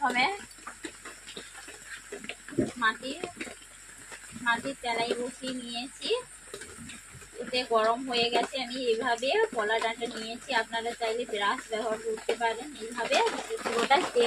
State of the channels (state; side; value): noise; left; hum, 28 dB below the sound